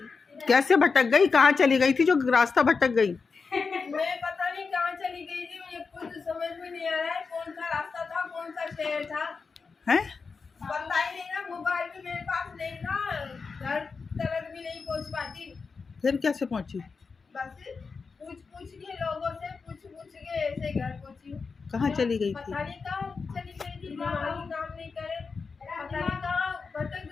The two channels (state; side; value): quieter; right; 4.9 dB